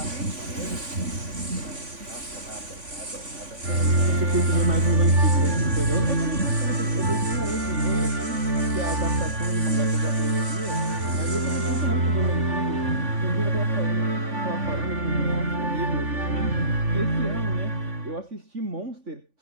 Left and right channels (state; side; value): late; left; 3.5 ms